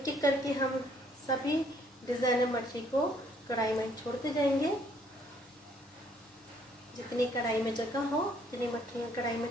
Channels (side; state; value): both; normal; correlation 0.65